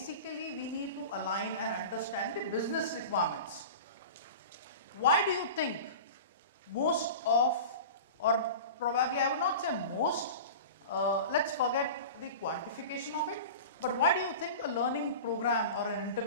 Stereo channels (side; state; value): both; inverted; correlation -0.34